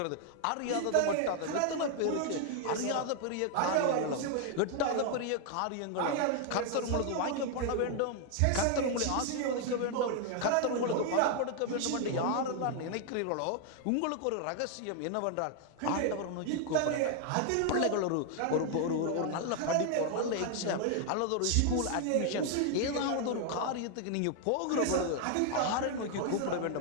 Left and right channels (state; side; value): different; both; correlation 0.00